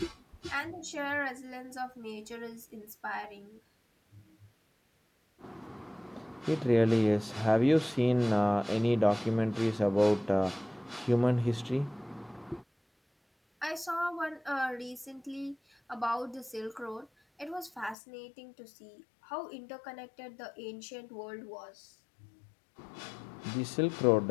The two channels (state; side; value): drops out; right; at 17.9 s